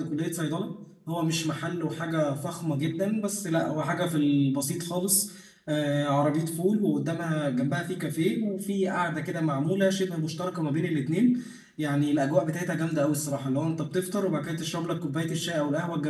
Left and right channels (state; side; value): identical; both; correlation 1.00